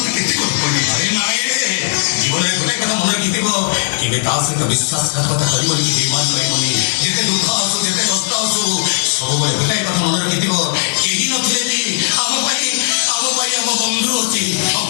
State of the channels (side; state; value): right; silent; digital silence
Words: কেতে কথা বলি। আরে নাই রে, জীবনের গোটাই কথা মনে রাখিଥିବ, କେବେ ତା ସହିତ ବିଶ୍ୱାସଘାତକତା କରିବନି, ବେଇମାନ ରହିବନି। ଯେତେ ଦୁଃଖ ଆସୁ, ଯେତେ କଷ୍ଟ ଆସୁ, ସବୁବେଳେ ଗୋଟାଇ କଥା ମନେ ରାଖିଥିବ, କେହି ନଥିଲେ ବି ଆମ ପାଇଁ ଆମ ବନ୍ଧୁ ଅଛି।